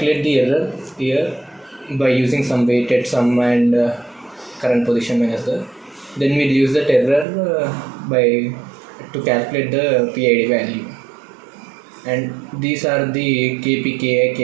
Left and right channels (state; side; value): drops out; left; at 7.2 s